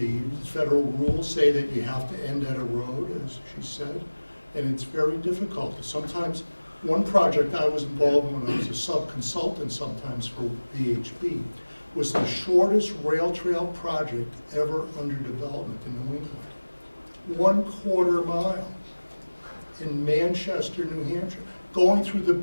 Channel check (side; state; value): both; inverted; correlation -1.00